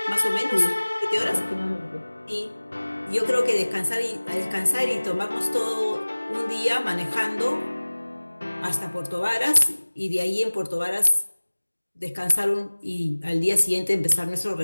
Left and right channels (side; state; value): both; inverted; correlation -1.00